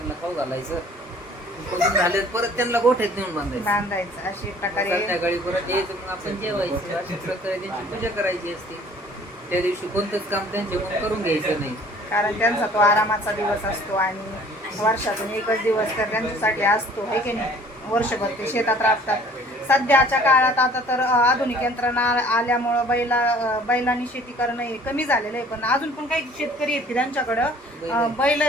खाऊ घालायचं. पळून झाले परत त्यांना गोठ्यात नेऊन बांधायचं. बांधायचं अशी प्रकारे. संध्याकाळी परत यायचं, मग आपण जेवायचं. अशा प्रकारे त्यांची पूजा करायची असते. त्या दिवशी कोणतंच काम त्यांच्याकडून करून घ्यायचं नाही, कारण त्यांचा तो आरामाचा दिवस असतो आणि वर्षातून एकच दिवस तर त्यांच्यासाठी असतो, है की नाही. वर्षभर ते शेतात राबतात. सध्याच्या काळात आता तर आधुनिक यंत्रणा आल्यामुळं बैलांनी शेती करणं हे कमी झालेलं आहे. पण अजून पण काही शेतकरी आहेत की त्यांच्याकडं बैल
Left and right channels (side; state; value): both; normal; correlation 0.53